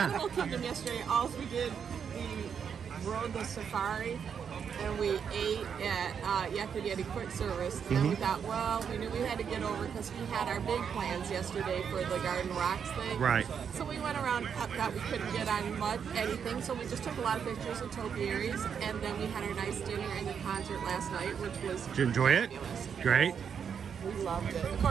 Animal Kingdom yesterday. All we did, we rode the safari and we ate at Yakima Quick Service. And then we thought, well, we knew we had to get over because we had our big plans yesterday for the Garden Rocks thing. Right. So we went around, thought we couldn't get on anything, so we just took a lot of pictures of topiaries, and then we had our nice dinner and the concert last night, which was Did you enjoy it? fabulous. Great. We loved it. Of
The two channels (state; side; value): quieter; left; 7.3 dB